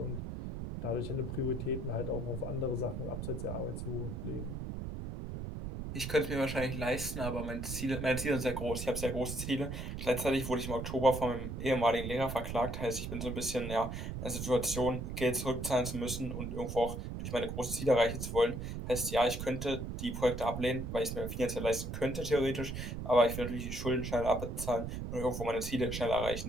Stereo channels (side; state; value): right; noise; rumble, 5 dB below the sound